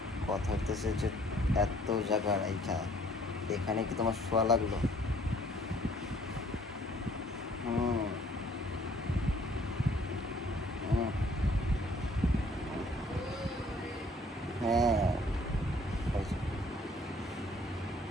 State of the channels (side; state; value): both; normal; correlation 0.59